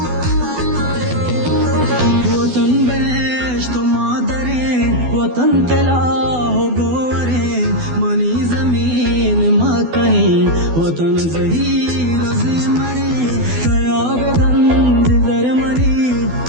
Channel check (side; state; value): left; late; 12 ms